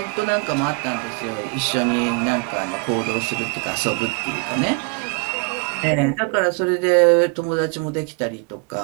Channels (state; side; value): quieter; left; 31.5 dB